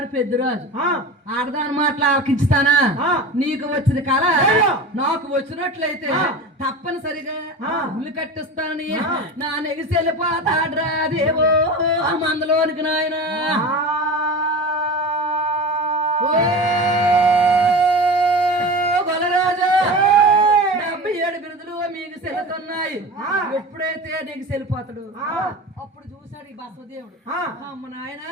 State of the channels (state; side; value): normal; both; correlation 0.31